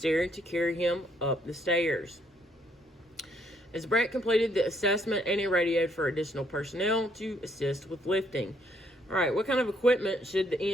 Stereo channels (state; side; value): normal; both; correlation 0.70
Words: to carry him up the stairs. As Brett completed the assessment, Annie radioed for additional personnel to assist with lifting. All right, what kind of equipment should the